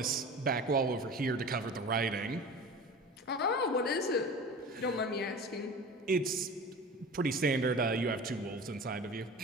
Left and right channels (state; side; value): normal; both; correlation 0.36